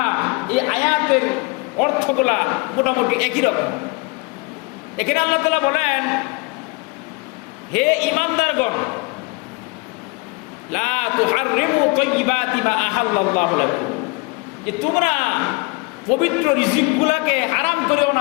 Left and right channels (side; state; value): right; quieter; 27.4 dB